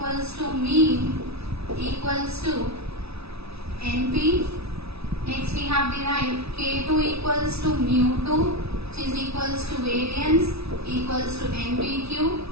to mean equals to NP. Next we have derived K2 equals to mu2, which is equals to variance equals to NPQ,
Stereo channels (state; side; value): late; left; 0.79 ms